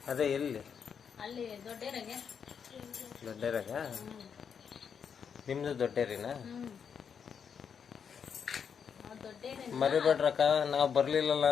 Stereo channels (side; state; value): right; quieter; 7.1 dB